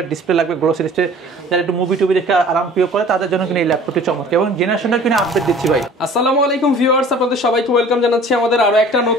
ডিসপ্লে লাগবে, গ্লোসি ডিসপ্লে, যারা একটু মুভি টুবি দেখে আরাম প্রিয় করে তাদের জন্য কিন্তু এই ল্যাপটপটি চমৎকার এবং জেনারেশনটা কিনে আপডেট দিচ্ছি ভাই। আসসালামু আলাইকুম ভিউয়ার্স, আপনাদের সবাইকে ওয়েলকাম জানাচ্ছি আমাদের আরো একটা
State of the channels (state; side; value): normal; both; correlation 0.48